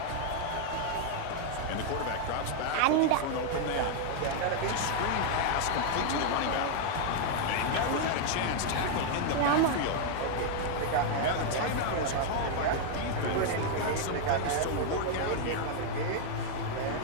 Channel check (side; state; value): both; different; correlation 0.00